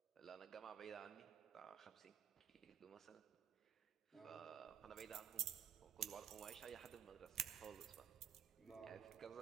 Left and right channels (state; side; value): quieter; left; 9.4 dB